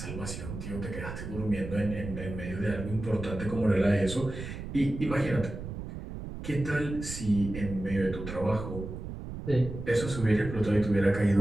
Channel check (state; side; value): noise; right; rumble, 8 dB below the sound